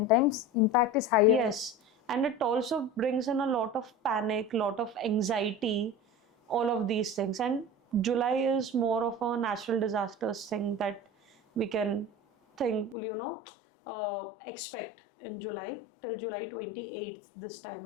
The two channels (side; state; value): right; drops out; at 13.0 s